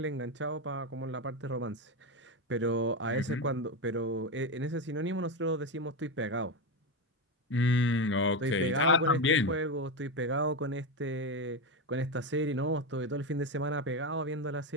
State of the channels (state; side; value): normal; both; correlation 0.13